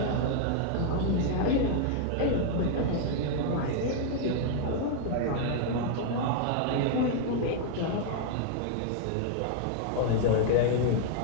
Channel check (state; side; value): different; both; correlation 0.00